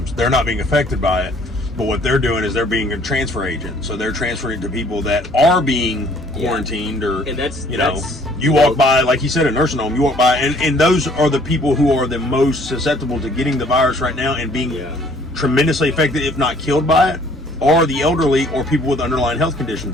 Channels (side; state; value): both; normal; correlation 0.58